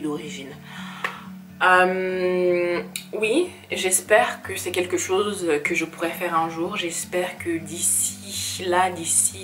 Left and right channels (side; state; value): both; identical; correlation 1.00